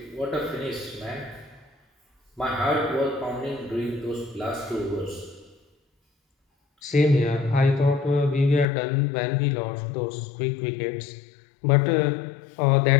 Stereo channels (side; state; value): right; drops out; at 8.7 s